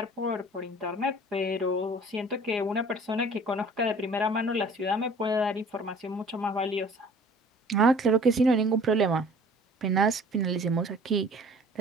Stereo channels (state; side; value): normal; both; correlation 0.49